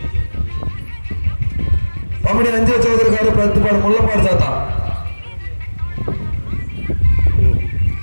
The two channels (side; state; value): both; inverted; correlation -1.00